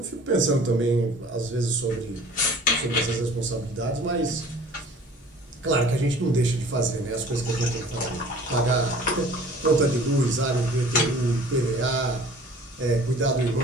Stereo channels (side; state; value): both; normal; correlation 0.48